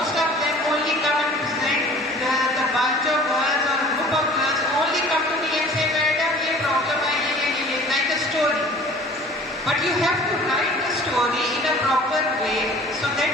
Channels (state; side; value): normal; both; correlation 0.47